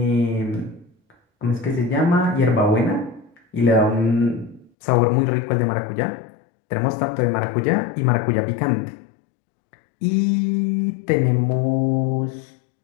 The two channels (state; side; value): drops out; right; at 4.7 s